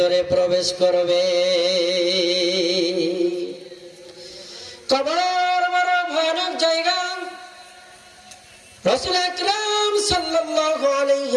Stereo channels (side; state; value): both; identical; correlation 1.00